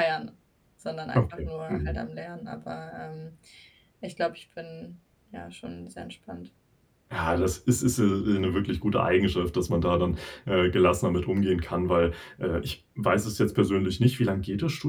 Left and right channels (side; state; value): both; identical; correlation 1.00